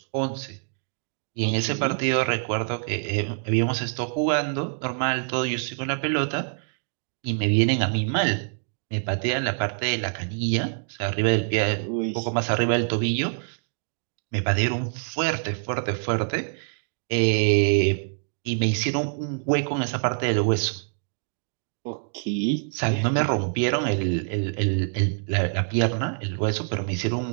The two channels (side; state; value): left; silent; digital silence